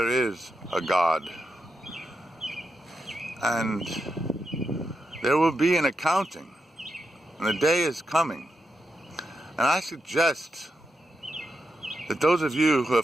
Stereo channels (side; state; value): both; normal; correlation 0.86